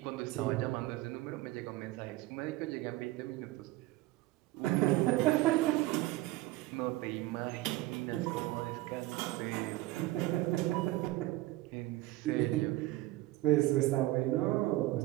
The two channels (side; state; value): left; quieter; 17.9 dB